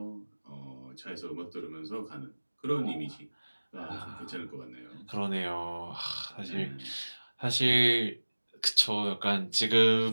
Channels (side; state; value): both; inverted; correlation -1.00